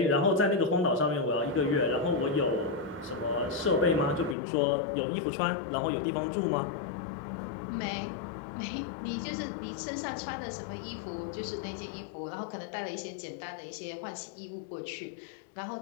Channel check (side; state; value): right; drops out; at 4.4 s